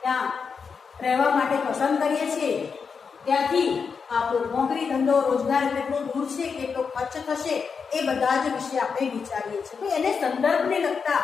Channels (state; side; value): quieter; right; 5.7 dB